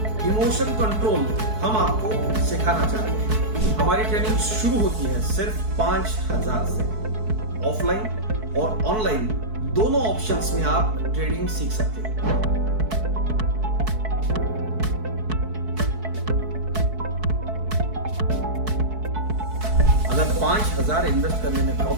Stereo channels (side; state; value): left; late; 4.6 ms